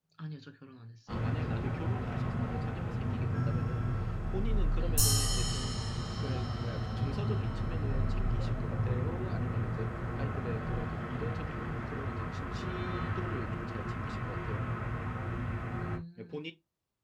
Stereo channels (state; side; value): identical; both; correlation 1.00